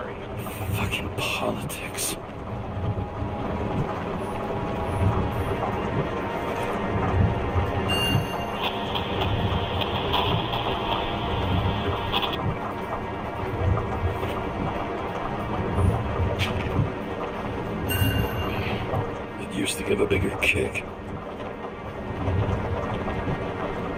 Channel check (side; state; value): both; identical; correlation 1.00